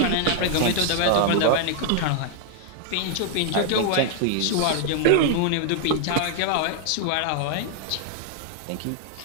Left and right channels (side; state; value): both; different; correlation 0.00